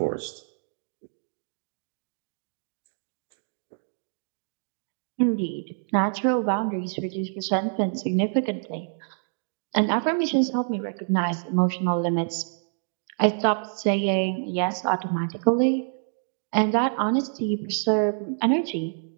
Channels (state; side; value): silent; left; digital silence